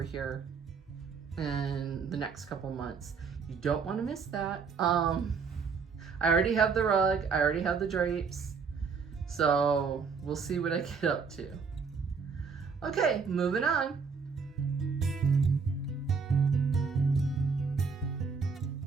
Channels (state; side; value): quieter; left; 5.5 dB